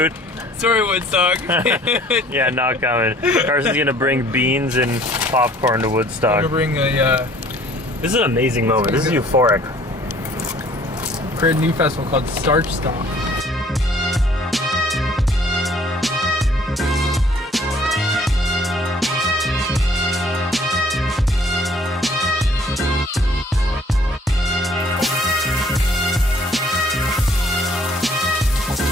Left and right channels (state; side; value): normal; both; correlation 0.56